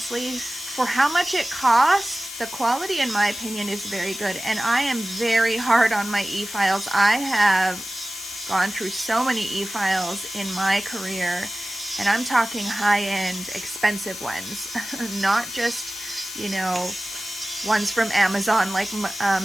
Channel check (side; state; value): left; noise; hiss, 10 dB below the sound